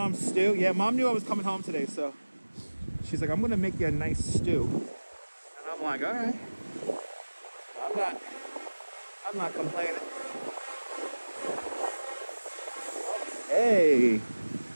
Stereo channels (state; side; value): inverted; both; correlation -1.00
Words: stew. Yeah, mom knew I was coming home today, so she's like, I'm gonna make you a nice stew. And I'm like, all right. I'm not complaining. Hey.